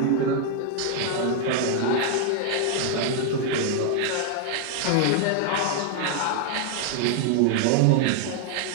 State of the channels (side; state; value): both; different; correlation 0.00